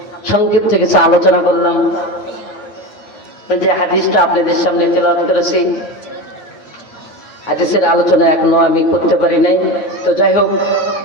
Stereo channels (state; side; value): late; right; 9.4 ms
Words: সংক্ষিপ্ত কিছু আলোচনা করলাম, যে হাদিসটা আপনাদের সামনে তেলাওয়াত করেছি, হাদিসের আলোচনা এখনো আমি করতে পারি নাই। তো যাই হোক,